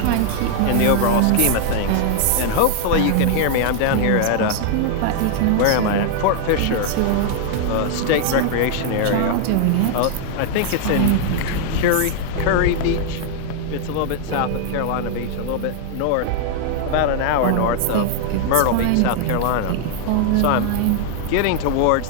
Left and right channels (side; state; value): both; different; correlation 0.00